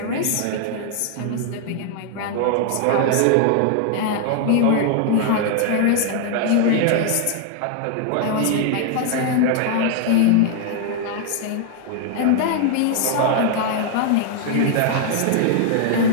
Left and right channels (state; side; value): different; both; correlation 0.00